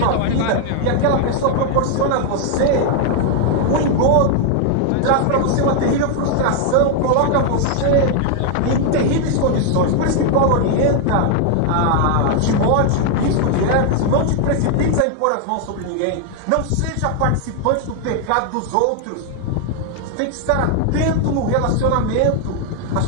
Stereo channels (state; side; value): different; both; correlation 0.00